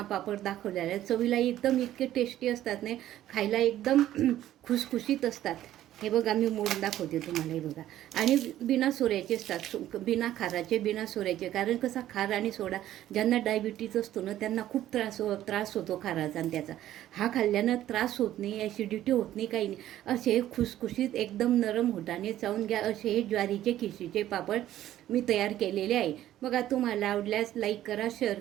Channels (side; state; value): left; quieter; 13.0 dB